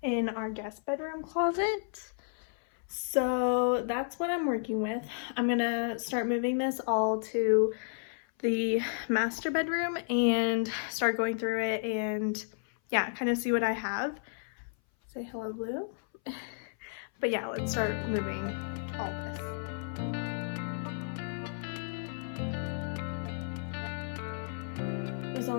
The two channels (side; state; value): right; silent; 56 dB below the other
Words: in our guest bedroom closet. So that's what I'm working with. I'm gonna start moving this all to the master bedroom and start going through it and yeah, kind of see what I have. Say hello, Blue. But yeah, let's start moving all this. There's